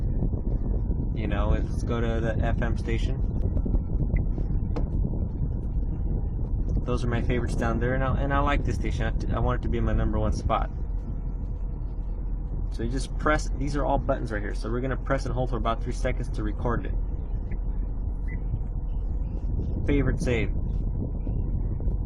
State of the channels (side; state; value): both; identical; correlation 1.00